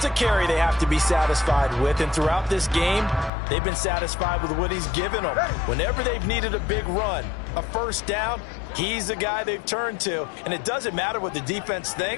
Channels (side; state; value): right; drops out; at 3.3 s